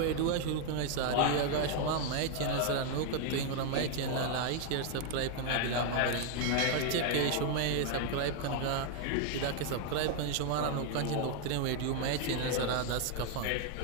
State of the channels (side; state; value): both; different; correlation 0.00